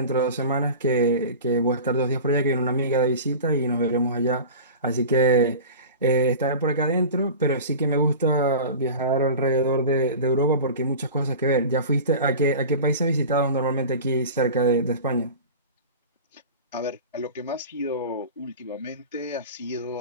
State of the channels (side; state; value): both; inverted; correlation -0.35